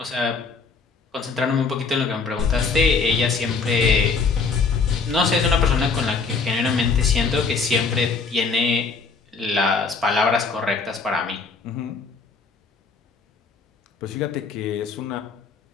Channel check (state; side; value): quieter; right; 4.7 dB